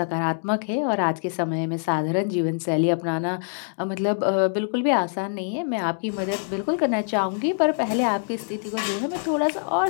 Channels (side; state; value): right; silent; digital silence